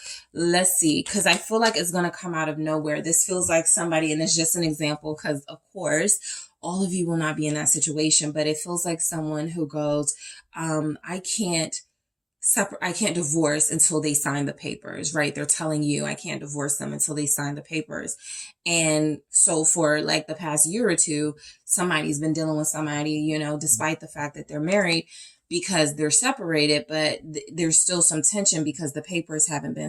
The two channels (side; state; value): both; identical; correlation 1.00